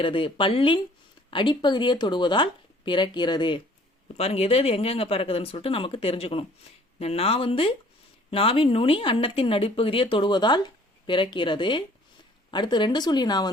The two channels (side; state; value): both; normal; correlation 0.55